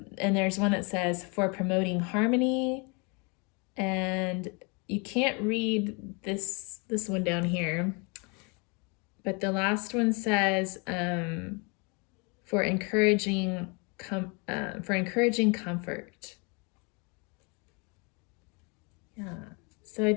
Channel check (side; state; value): right; quieter; 32.1 dB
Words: there's one that says, for promoting harmony. And you can't read this one down here. But the last one says, for encouraging comfort. Yeah. So I